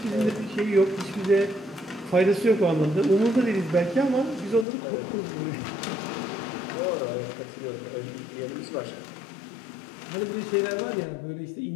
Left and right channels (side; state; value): right; drops out; at 4.7 s